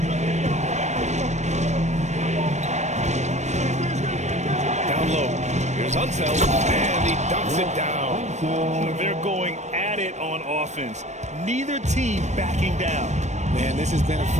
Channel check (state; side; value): late; left; 0.34 ms